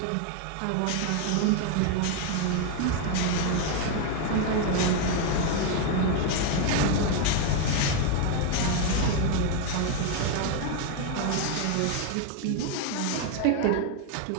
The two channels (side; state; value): both; different; correlation 0.01